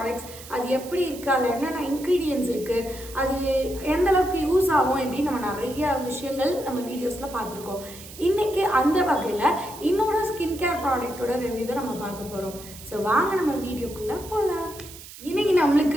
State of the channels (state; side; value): noise; right; hiss, 16 dB below the sound